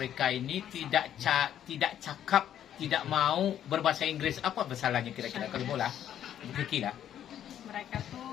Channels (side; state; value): right; quieter; 10.4 dB